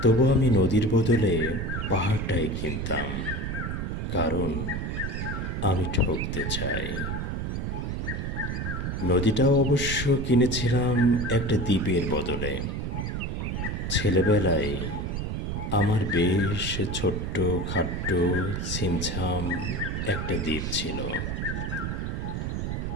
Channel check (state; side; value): noise; right; rumble, 2 dB below the sound